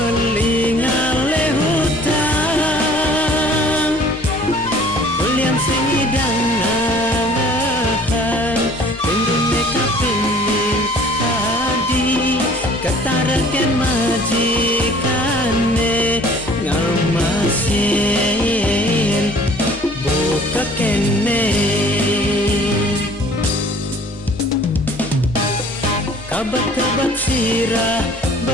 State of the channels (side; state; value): both; normal; correlation 0.52